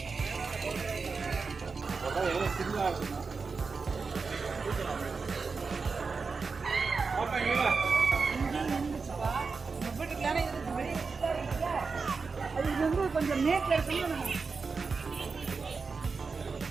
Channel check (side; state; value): left; quieter; 4.7 dB